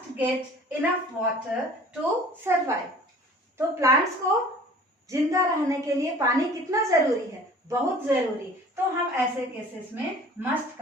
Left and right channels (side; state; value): both; normal; correlation 0.47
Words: get enough water to survive. तो प्लांट्स को जिंदा रहने के लिए पानी कितना जरूरी है? बहुत जरूरी। तो हम ऐसे केसेस में मस्ट